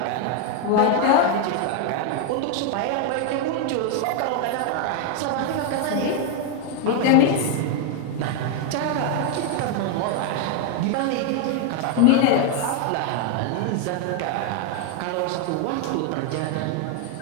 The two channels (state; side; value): different; both; correlation 0.00